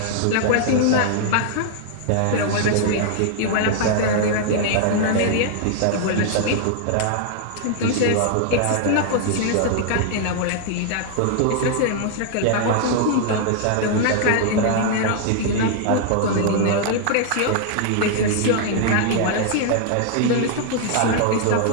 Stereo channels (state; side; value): different; both; correlation 0.00